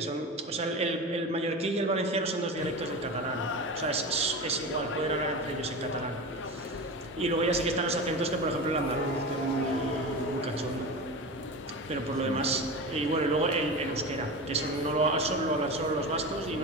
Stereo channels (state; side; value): normal; both; correlation 0.26